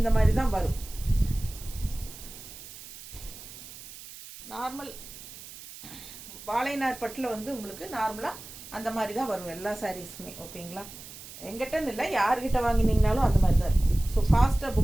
மாதிரி தான் வரும். நார்மல் வாழைநார் பட்டில் வந்து உங்களுக்கு நார்மலாக அந்த மாதிரி தான் வரும் எல்லா சாரீஸுமே. ஓகேங்களா? எங்கிட்டன்னு இல்லை, யார்கிட்ட வாங்கினீங்கனாலும் அந்த மாதிரி தான் இருக்கும். ஸோ ஃபாஸ்ட்டாக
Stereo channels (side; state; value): right; noise; hiss, 15 dB below the sound